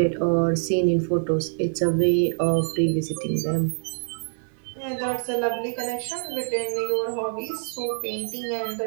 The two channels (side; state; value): left; silent; 56 dB below the other